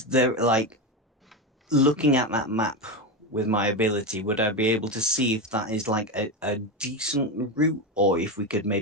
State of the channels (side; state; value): both; normal; correlation 0.15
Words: there like looking at that map with my ability, would I be able to see if that is like a decent route, or if we could